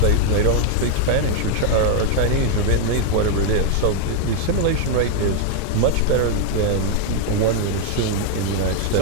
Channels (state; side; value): different; both; correlation 0.00